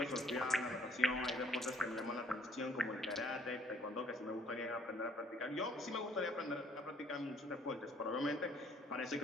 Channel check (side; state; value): both; normal; correlation 0.62